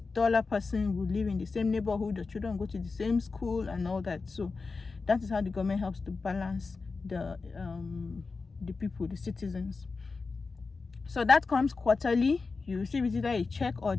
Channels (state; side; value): quieter; right; 4.3 dB